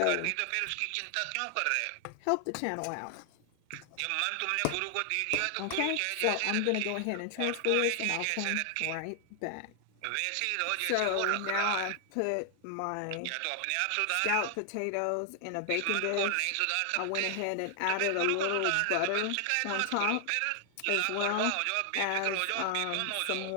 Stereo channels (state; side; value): different; both; correlation 0.00